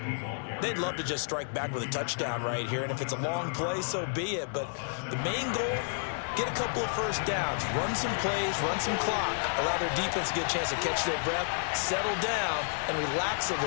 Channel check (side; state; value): right; silent; digital silence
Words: They'd love to just strike back with a touchdown right here, and if it's a long play, so be it. But the main goal, get a couple of first downs, run some plays, run some clock, allow their defense to get a chance to catch their breath, settle down, and relax a